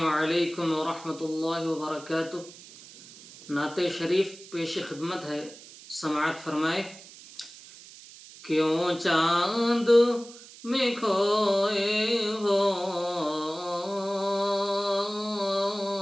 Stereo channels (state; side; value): noise; right; hiss, 19 dB below the sound